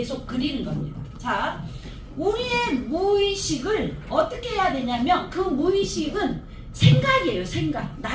그리는 겁니다. 자, 우리의 무의식을 어떻게 해야 되냐면 그 무의식은 생각이에요. 생각.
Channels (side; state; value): both; identical; correlation 1.00